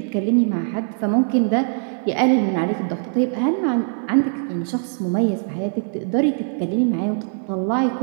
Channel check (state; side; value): silent; left; digital silence